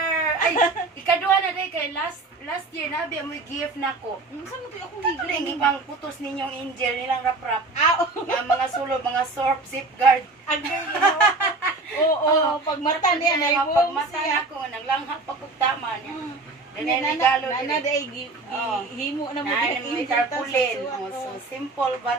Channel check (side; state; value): left; quieter; 3.3 dB